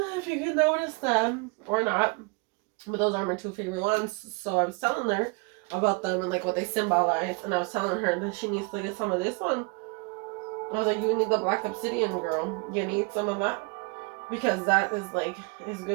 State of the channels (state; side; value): quieter; left; 29.9 dB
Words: you can notice them or not. But those are my two favorite ones. So I was telling her about them and like what they symbolize. And I was telling her that she needs to get some of this one. I was like, you need the black obsidian, girl. You need some of that. Because that is like, is